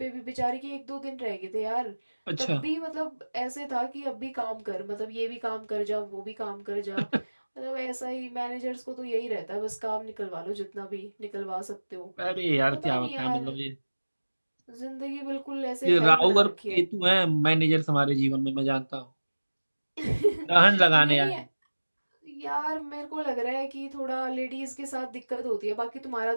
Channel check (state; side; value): inverted; both; correlation -1.00